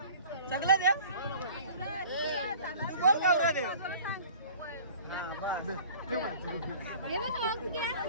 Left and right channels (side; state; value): both; inverted; correlation -0.45